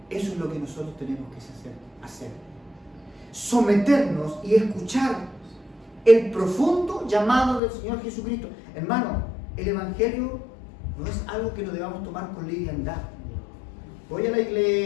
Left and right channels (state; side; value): drops out; right; at 7.6 s